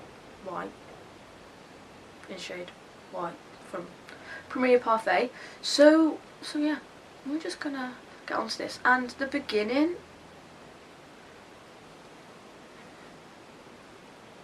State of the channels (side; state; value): both; identical; correlation 1.00